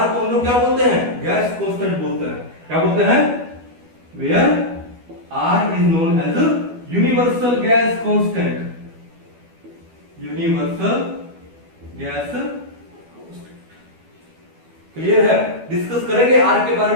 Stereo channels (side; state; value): left; late; 12 ms